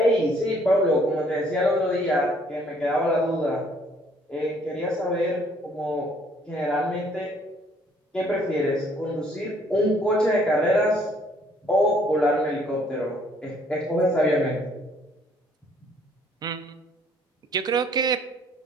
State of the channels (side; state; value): both; normal; correlation 0.62